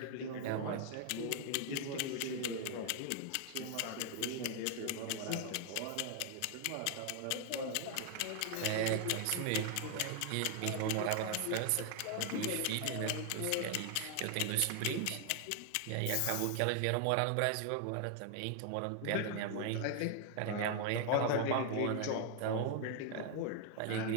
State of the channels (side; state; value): both; different; correlation 0.00